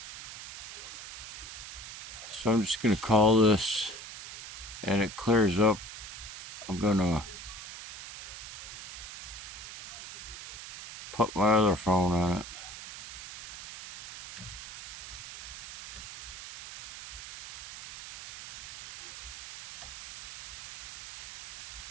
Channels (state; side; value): noise; right; hiss, 12 dB below the sound